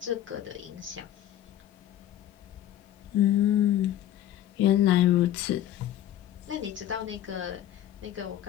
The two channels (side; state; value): right; quieter; 12.1 dB